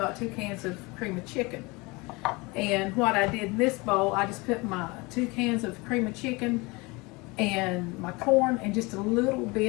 2 cans of cream of chicken. And what I did in this bowl, I just put my 2 cans of cream of chicken and my corn and just a little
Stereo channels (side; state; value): right; quieter; 25.3 dB